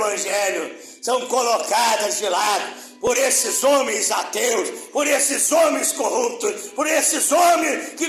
são colocadas de lado por esses homens ateus, por esses homens corruptos, por esses homens que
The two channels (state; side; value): identical; both; correlation 1.00